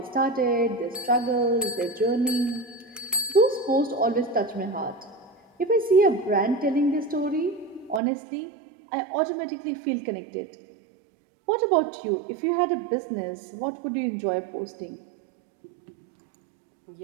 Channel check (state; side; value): drops out; left; at 8.0 s